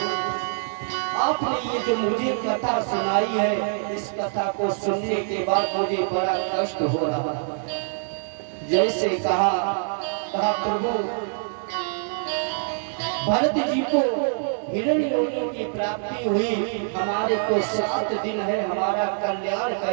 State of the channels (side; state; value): left; silent; digital silence